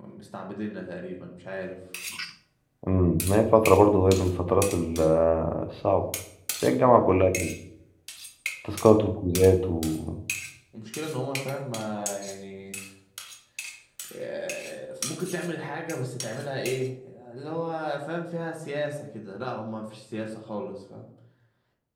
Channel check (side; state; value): both; identical; correlation 1.00